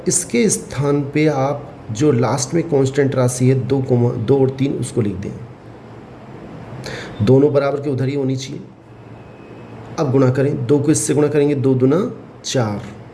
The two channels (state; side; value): identical; both; correlation 1.00